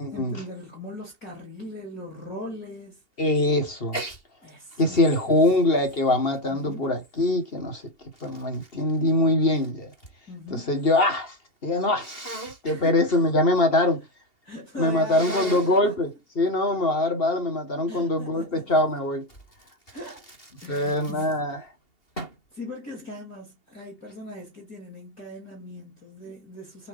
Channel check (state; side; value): late; right; 2.8 ms